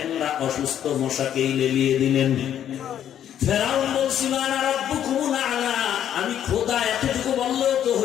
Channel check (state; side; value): quieter; right; 10.2 dB